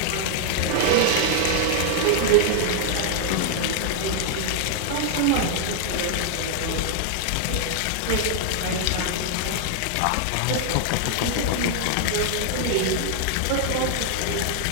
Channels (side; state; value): both; different; correlation 0.00